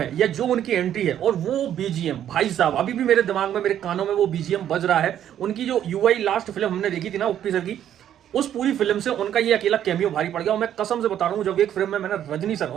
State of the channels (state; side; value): quieter; left; 10.5 dB